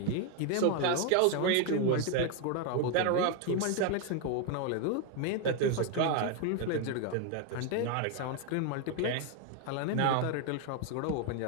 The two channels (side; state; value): both; different; correlation 0.01